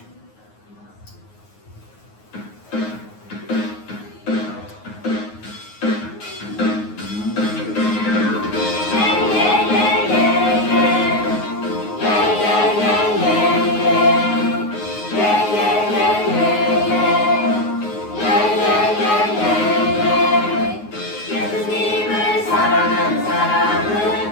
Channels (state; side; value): late; right; 9.5 ms